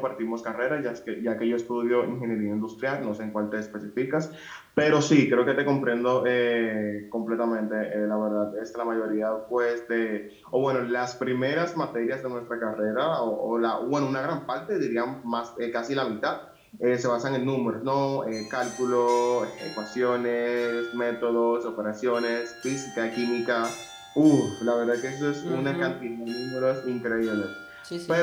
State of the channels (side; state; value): both; identical; correlation 1.00